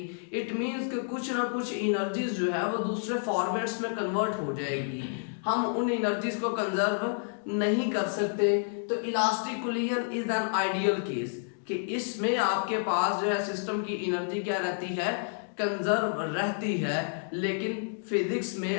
इट मीन्स कि कुछ ना कुछ एनर्जीज जो है वो दूसरे फॉर्मेट्स में कन्वर्ट हो जाएगी। हम उन एनर्जीज को कंजर्व नहीं कर सकते। तो elastic collision is an ideal case कि इसमें आपके पास जो है सिस्टम की एनर्जी क्या रहती है, कंजर्व रहती है। लेकिन फिजिक्स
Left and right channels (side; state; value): right; silent; digital silence